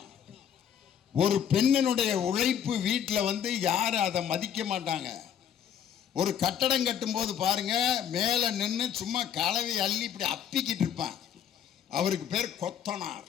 ஒரு பெண்ணினுடைய உழைப்பு வீட்டில் வந்து யாரும் அதை மதிக்க மாட்டாங்க. ஒரு கட்டடம் கட்டும் போது பாருங்க, மேலே நின்று சும்மா கலவை அள்ளி இப்படி அப்பிக்கிட்டு இருப்பான். அவருக்கு பேர் கொத்தனார்.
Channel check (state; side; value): quieter; right; 9.0 dB